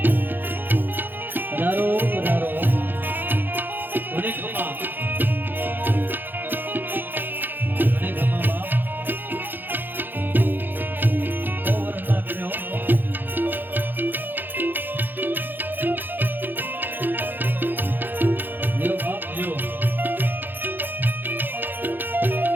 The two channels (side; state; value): left; late; 0.092 ms